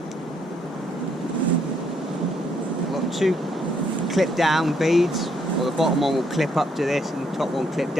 I've got 2 clip down beads, or the bottom one will clip up to this and the top one clip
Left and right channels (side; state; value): both; normal; correlation 0.72